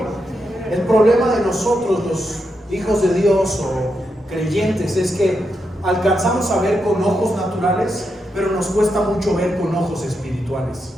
El problema de nosotros, los hijos de Dios o creyentes, es que alcanzamos a ver con ojos naturales, pero nos cuesta mucho ver con ojos espirituales.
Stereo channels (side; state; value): both; normal; correlation 0.84